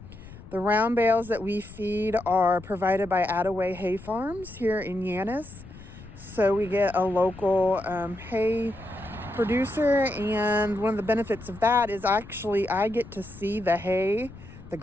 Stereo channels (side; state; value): left; noise; rumble, 17 dB below the sound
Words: The round bales that we feed are provided by Attaway Hay Farms here in Yannis. So we get a local hay producer, and one of the benefits of that is actually I get to see the hay, the